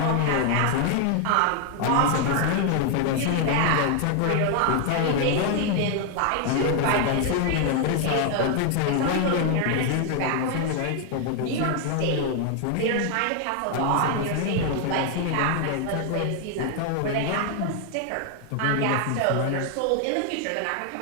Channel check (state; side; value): different; both; correlation 0.00